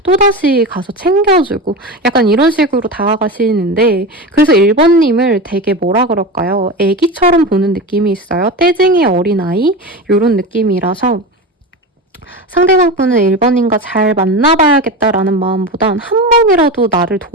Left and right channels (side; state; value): both; normal; correlation 0.24